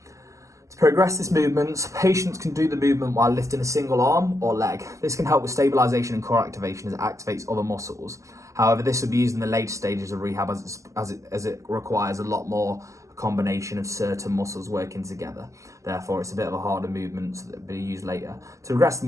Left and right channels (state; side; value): late; left; 0.15 ms